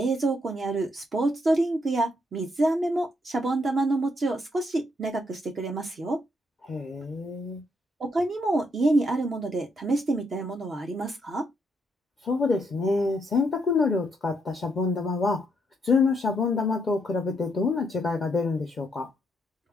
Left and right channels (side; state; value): both; normal; correlation 0.76